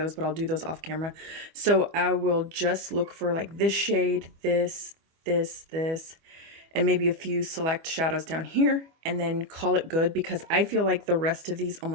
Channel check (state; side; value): late; left; 25 ms